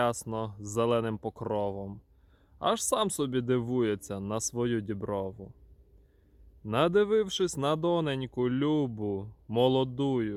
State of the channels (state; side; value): identical; both; correlation 1.00